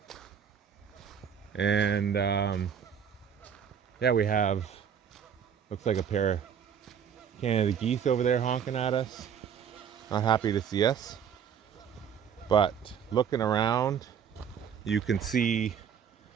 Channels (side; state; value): left; quieter; 7.9 dB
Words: And yeah, we have, looks like a pair of Canada geese over there honking at us. Not happy to see us. But looking around, you can see